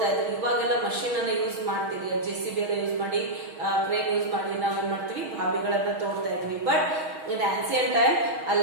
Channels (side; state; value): left; late; 6.3 ms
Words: ಇದ್ರು. ಇವಾಗೆಲ್ಲ machine ಅನ್ನ use ಮಾಡ್ತೀವಿ, JCB ಎಲ್ಲ use ಮಾಡಿ, crane use ಮಾಡಿ ನಾವು ಏನ್ ಮಾಡ್ತೀವಿ, ಬಾವಿಗಳನ್ನ ತೋಡ್ತಾ ಇದ್ವಿ. ಬಟ್ ಇನ್ ಆನ್ಸಿಯಂಟ್ ಟೈಮ್